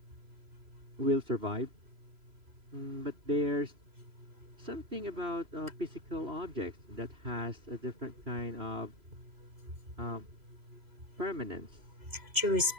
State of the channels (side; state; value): left; late; 3.0 ms